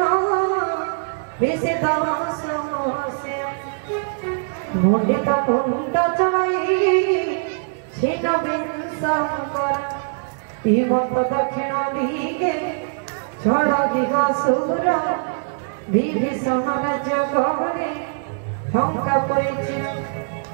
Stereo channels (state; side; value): silent; left; digital silence